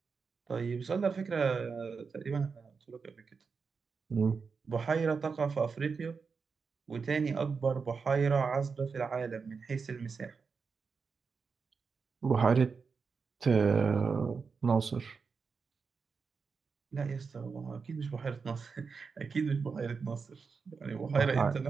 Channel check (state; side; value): quieter; left; 5.2 dB